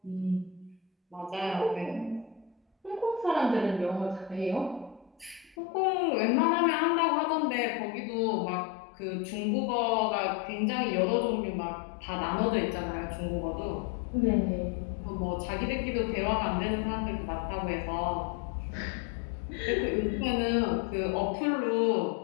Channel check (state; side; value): drops out; right; at 5.6 s